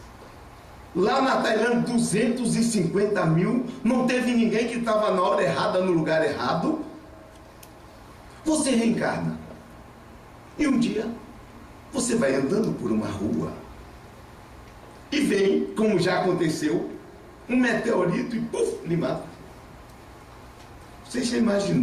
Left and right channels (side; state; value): both; identical; correlation 1.00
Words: Lá na Tailândia, 250 mil. Não teve ninguém que estava na hora errada, no lugar errado. Você reencarna. E um dia, você vai andando por uma rua e vem, como já aconteceu, um meteorito e puf, lhe mata. Você já